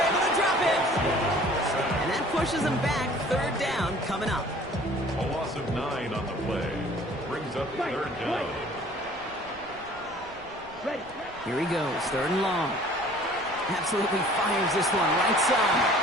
able to drop it. And that pushes them back. 3rd down coming up. A loss of 9 on the play. Brings up 3rd down. Here he goes. 3rd and long. Absolutely fires this one right side.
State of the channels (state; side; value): noise; right; rumble, 23 dB below the sound